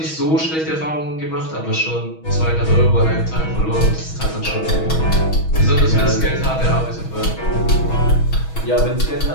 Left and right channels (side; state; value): right; late; 6.3 ms